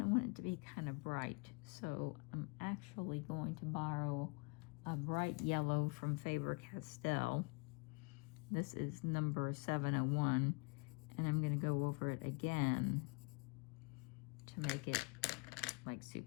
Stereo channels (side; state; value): right; quieter; 31.8 dB